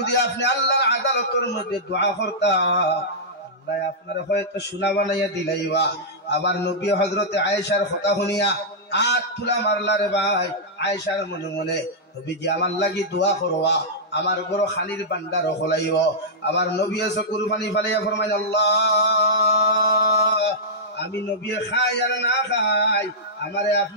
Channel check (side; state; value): both; normal; correlation -0.11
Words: আপনি আল্লাহর আদালতের মধ্যে দোয়া করতা, আল্লাহ আপনার হয়তো সোনা বানাইয়া দিলাইবা। আবার নবী হযরতে আয়েশার কথা শুনিয়া আট তুলা মারলা রে ভাই। আয়েশার মনে মনে, নবীজি আমার লাগি দোয়া করবা, আমার বড় খানির বান্দার হলাইব। আমার নবী এসে কুরবানি ফালাইয়া ফরমাইল, আল্লাহ আমি নবী খাই আর না খাই, আমারে